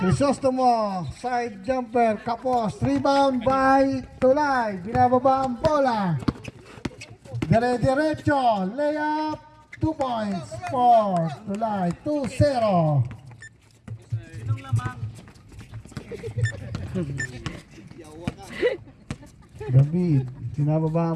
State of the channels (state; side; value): identical; both; correlation 1.00